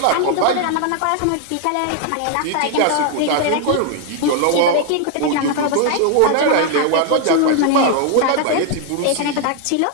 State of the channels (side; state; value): both; different; correlation 0.00